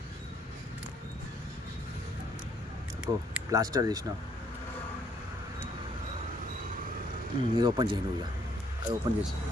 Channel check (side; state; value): both; normal; correlation 0.67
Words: ప్లాస్టర్ తీసిన. ఇది ఓపెన్ చేయి నువ్వు. అది ఓపెన్ చేసి